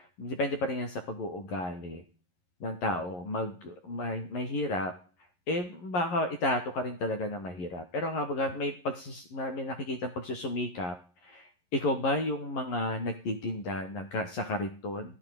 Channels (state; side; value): late; right; 11 ms